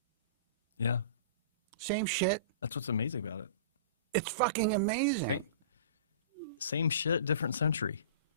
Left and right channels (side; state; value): both; inverted; correlation -0.39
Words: Yeah, Same shit. that's what's amazing about it. It's fucking amazing. Same shit, different century.